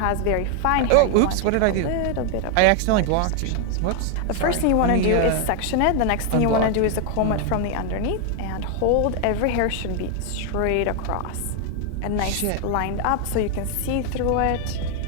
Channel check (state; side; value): different; both; correlation 0.00